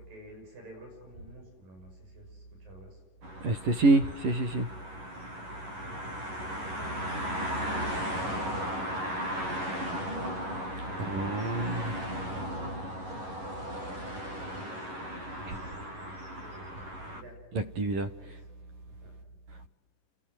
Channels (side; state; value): left; late; 11 ms